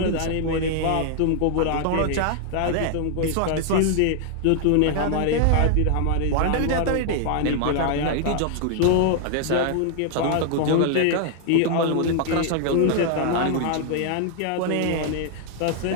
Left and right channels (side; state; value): both; different; correlation 0.00